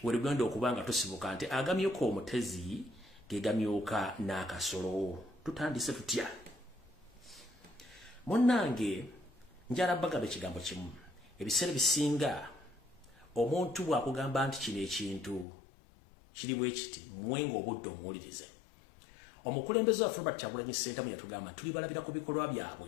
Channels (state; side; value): drops out; right; at 15.5 s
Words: werugenda okuba nga tusibuka nti agamyuka omutezi gegamyuka n'akasolo. Tutandise tutya? Munnange njala bagamba ekigambo kimu. Ebiseera bisinga omuntu bw'akugamba nti kino ekintu kiri bwe kiti mwenga obudde omuwulirize. Omukulembeze waffe Robert Kyagulanyi Ssentamu yatugamba tuli balabira ku bikolwa